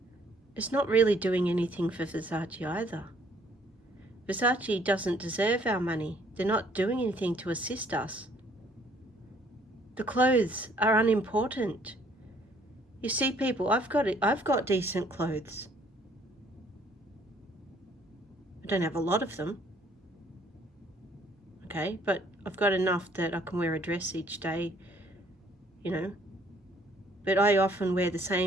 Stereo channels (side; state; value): both; normal; correlation 0.62